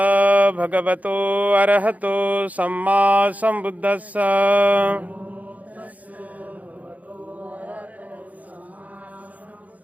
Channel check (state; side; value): late; left; 0.074 ms